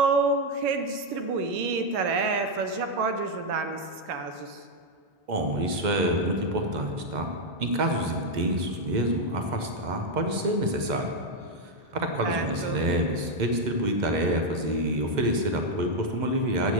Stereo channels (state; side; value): late; left; 2.1 ms